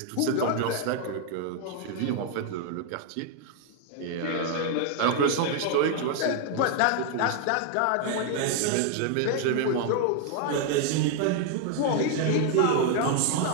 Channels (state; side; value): different; both; correlation 0.00